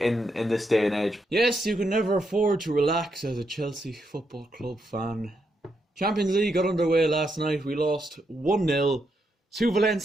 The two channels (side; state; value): both; normal; correlation 0.80